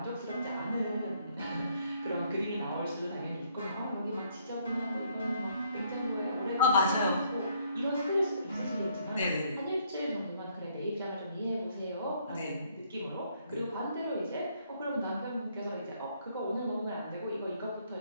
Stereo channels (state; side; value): inverted; both; correlation -0.68